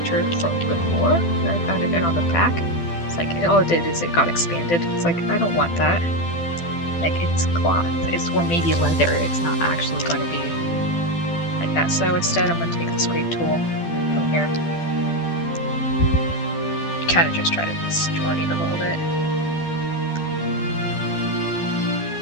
from before. I found it on the back. It's like, all it did is it got expanded. It's like, I don't want that. Like, it's cloth, or maybe leather. It's not actually going to be like that. So instead, I'm going to take the scrape tool from here. Kind of just try to distort it a little bit.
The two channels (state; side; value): late; right; 12 ms